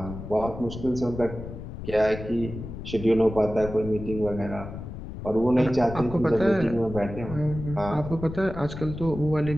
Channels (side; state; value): left; noise; rumble, 10 dB below the sound